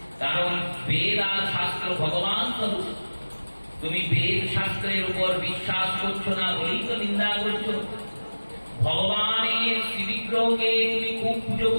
কারণ বেদ আর শাস্ত্র ভগবান স্বরূপ। তুমি বেদ শাস্ত্রের উপর বিশ্বাস করছো না বলেই তো নিন্দা করছো। ভগবানের শ্রীবিগ্রহকে তুমি খুব পুজো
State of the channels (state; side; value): inverted; both; correlation -1.00